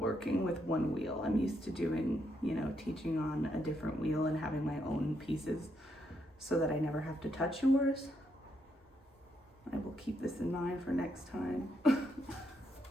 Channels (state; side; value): normal; both; correlation 0.78